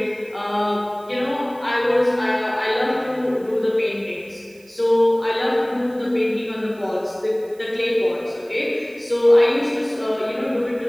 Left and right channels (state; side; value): noise; right; hiss, 28 dB below the sound